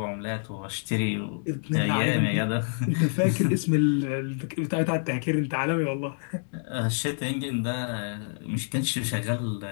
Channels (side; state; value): right; silent; digital silence